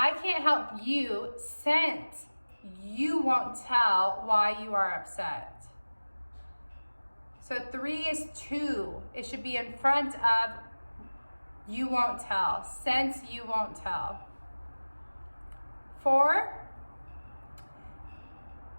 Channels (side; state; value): both; inverted; correlation -1.00